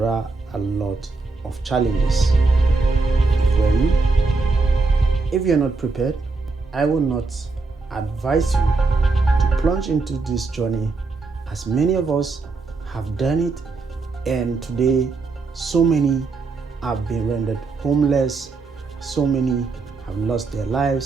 are a lot of challenges. If you're not prepared, I will not advise you to plunge into this journey, as many of us have done it, and today so many have been rendered homeless, so many have lost their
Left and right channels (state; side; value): quieter; left; 3.9 dB